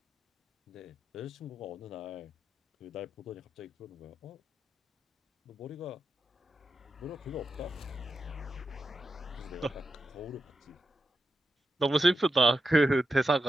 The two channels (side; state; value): both; normal; correlation 0.88